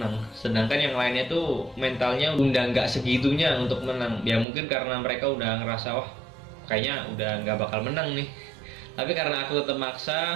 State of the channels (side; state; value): left; drops out; at 4.5 s